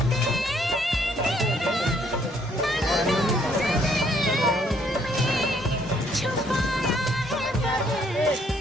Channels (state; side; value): normal; both; correlation 0.67